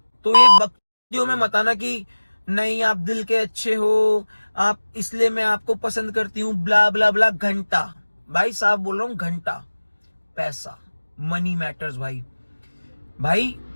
तो ये बकचोदियों में मत आना कि नहीं आप दिल के अच्छे हो, आप इसलिए मैं आपको पसंद करती हूँ, ब्ला ब्ला ब्ला। घंटा भाई साहब बोल रहा हूँ, घंटा पैसा, मनी मैटर्स भाई। भाई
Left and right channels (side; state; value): both; inverted; correlation -1.00